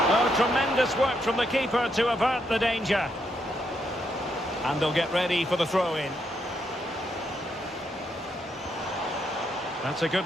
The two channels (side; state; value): both; normal; correlation 0.78